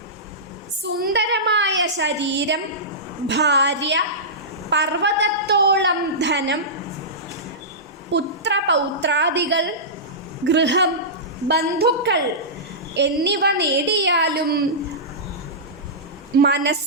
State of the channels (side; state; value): both; normal; correlation -0.17